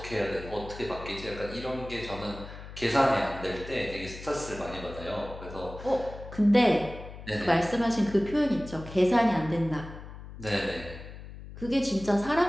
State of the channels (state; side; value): noise; left; hum, 13 dB below the sound